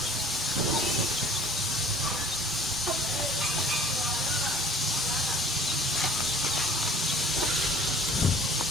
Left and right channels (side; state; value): both; normal; correlation 0.49